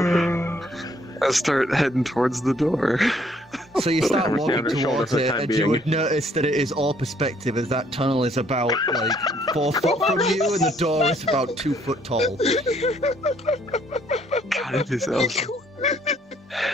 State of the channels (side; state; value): both; normal; correlation 0.65